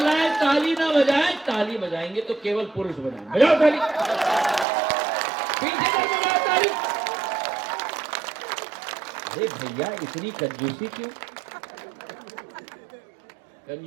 ताली ना बजाएं, ताली बजाएंगे तो केवल पुरुष बजाएंगे। बजाओ ताली, पीछे से बजाओ ताली। अरे भैया, इतनी कंजूसी क्यों?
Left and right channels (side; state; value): left; drops out; at 4.7 s